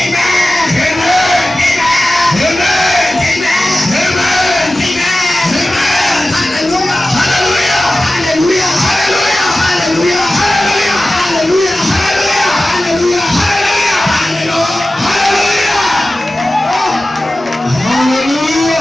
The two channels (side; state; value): both; normal; correlation 0.95